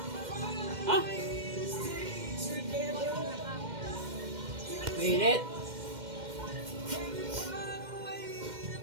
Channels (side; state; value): left; late; 2.1 ms